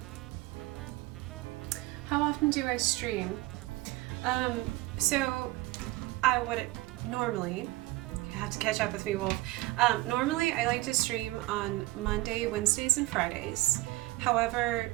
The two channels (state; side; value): quieter; left; 20.1 dB